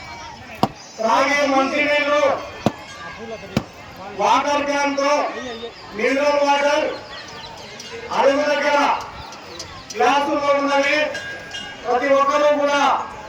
త్రాగే మంచినీళ్ళు వాటర్ క్యాన్ తో మినరల్ వాటర్ అడుగు దగ్గర గ్లాసుల్లో ఉన్నవి ప్రతి ఒక్కరూ కూడా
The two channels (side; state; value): both; identical; correlation 1.00